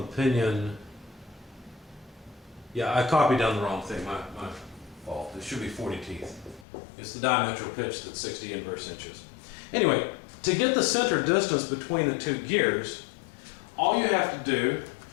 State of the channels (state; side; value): drops out; right; at 6.7 s